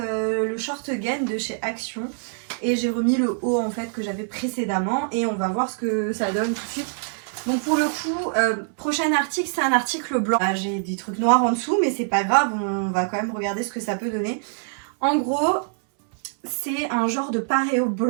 short gain de chez Action. Et j'ai remis le haut en fait que j'avais précédemment et on va voir ce que ça donne tout de suite. Donc pour le coup, prochain article, c'est un article blanc. J'ai des trucs noirs en dessous mais c'est pas grave, on va quand même regarder ce que ça peut donner. En gros, c'est un genre de paréo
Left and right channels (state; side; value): silent; left; 62 dB below the other